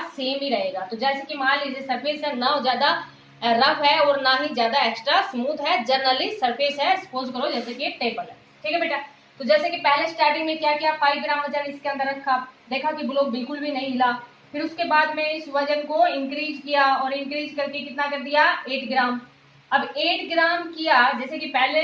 सेम ही रहेगा। तो जैसे कि मान लीजिए सरफेस है ना ज्यादा रफ है और ना ही ज्यादा एक्स्ट्रा स्मूथ है, जनरली सरफेस है, सपोज करो जैसे कि टेबल है। ठीक है बेटा? तो जैसे कि पहले स्टार्टिंग में क्या किया, 5 ग्राम वजन इसके अंदर रखा, देखा कि ब्लॉक बिल्कुल भी नहीं हिला, फिर उसके बाद में इस वजन को इंक्रीज किया और इंक्रीज करके कितना कर दिया, 8 ग्राम। अब 8 ग्राम किया, जैसे कि पहले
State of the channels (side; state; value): both; identical; correlation 1.00